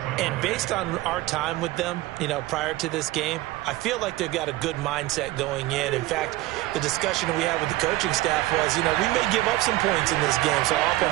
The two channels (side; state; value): left; quieter; 18.0 dB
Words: And based on our time with them, prior to this game, I feel like they've got a good mindset going in. In fact, the discussion we had with the coaching staff was, we may give up some points in this game, so our